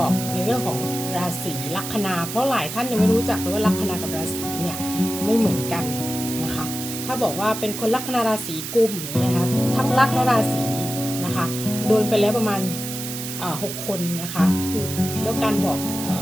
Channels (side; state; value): right; noise; hiss, 7 dB below the sound